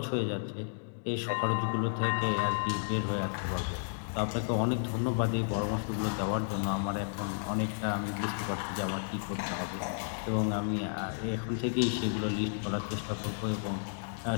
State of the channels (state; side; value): silent; right; digital silence